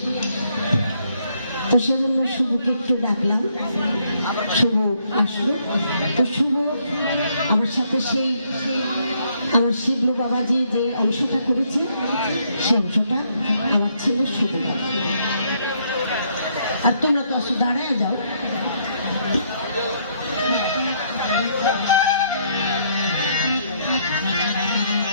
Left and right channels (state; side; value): inverted; both; correlation -0.71